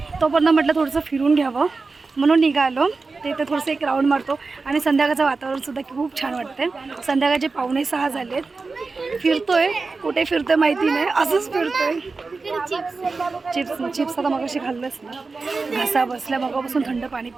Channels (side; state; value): left; quieter; 4.1 dB